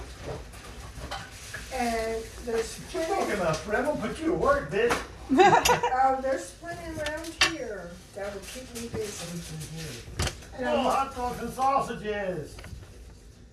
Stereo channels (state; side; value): identical; both; correlation 1.00